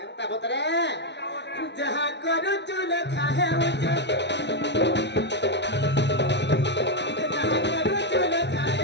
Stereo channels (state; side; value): late; right; 0.51 ms